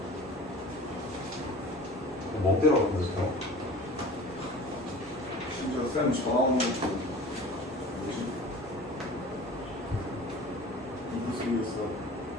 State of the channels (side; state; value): both; normal; correlation 0.41